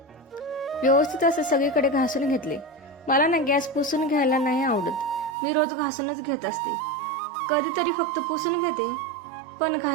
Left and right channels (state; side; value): drops out; left; at 5.4 s